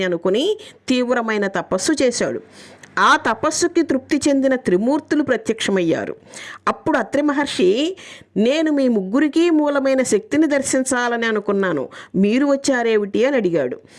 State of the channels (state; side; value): identical; both; correlation 1.00